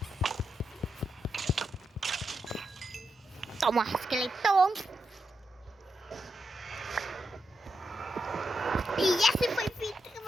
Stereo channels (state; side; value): normal; both; correlation 0.85